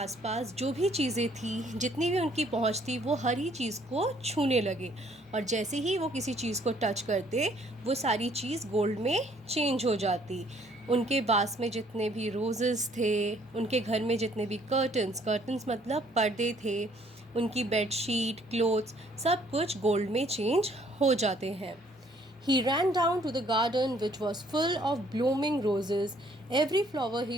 जो भी चीज़ें थी, जितनी भी उनकी पहुंच थी, वो हर ही चीज़ को छूने लगे। और जैसे ही वो किसी चीज़ को टच करते, वो सारी चीज़ गोल्ड में चेंज हो जाती। उनके वास में जितने भी रोज़ेस थे, उनके घर में जितने भी कर्टन्स मतलब पर्दे थे, उनकी बेडशीट, क्लोथ्स, सब कुछ गोल्ड में चेंज हो जाते हैं। He ran down to the garden, which was full of blooming roses. Every flower he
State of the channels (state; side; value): normal; both; correlation 0.62